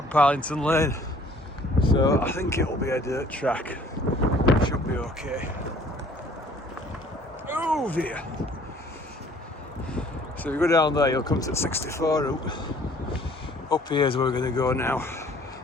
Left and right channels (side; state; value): both; normal; correlation 0.56